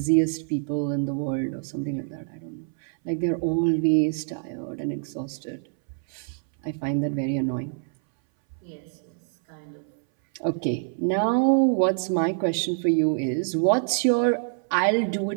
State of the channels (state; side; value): silent; left; 60 dB below the other